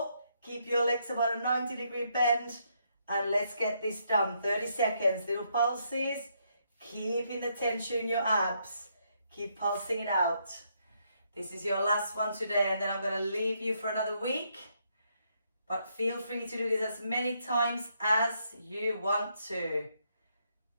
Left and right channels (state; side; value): inverted; both; correlation -0.75